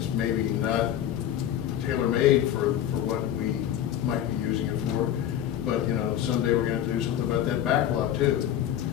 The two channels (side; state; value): right; quieter; 10.9 dB